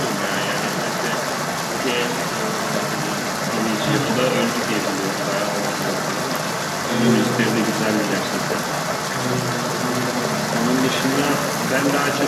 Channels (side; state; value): both; identical; correlation 1.00